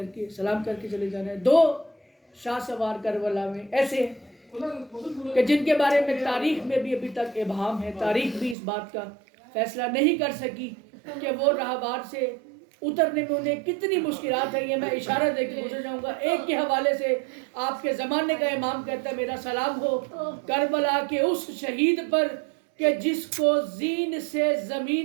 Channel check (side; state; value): left; drops out; at 8.6 s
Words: کے سلام کر کے چلے جانا ہے. 2 شاہ سوار کربلا میں ایسے ہیں کہ جن کے بارے میں تاریخ میں بھی ابھی تک ابہام ہے. تاریخ بھی اس بات کا فیصلہ نہیں کر سکی کہ وہ راہوار سے اترنے میں انہیں کتنی مشکلات ہیں. یہ میں اشارہ دے کے گزر جاؤں گا. ایک کے حوالے سے آپ کے زمانے کا امام کہتا ہے میرا سلام ہو کربلا کے اس شہید پر کہ جس کو زین سے